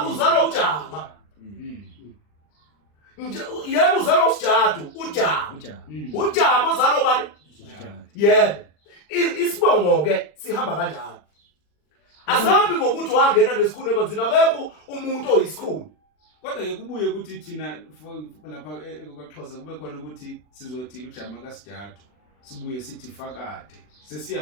ujama yebo uzalwa usijadu ujama uzalwa bani yebo isibongo ke sihamba kanjalo asahambi ngokuthi wangena nesikhuni emanzini akekho umuntu oyisikhuni kodwa ke kubuye ukuthi thina lapha ekwaXhosa kube khona ukuthi sizothi ujama kasijadu sibuye sithi fakade sesiya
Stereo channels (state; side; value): late; right; 40 ms